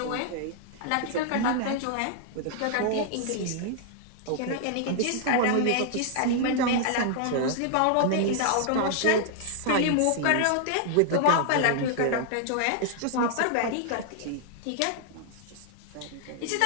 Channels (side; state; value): both; different; correlation -0.01